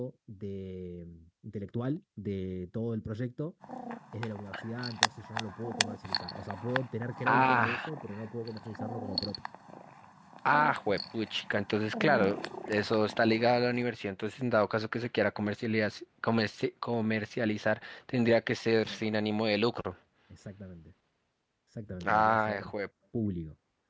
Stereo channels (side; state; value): both; identical; correlation 1.00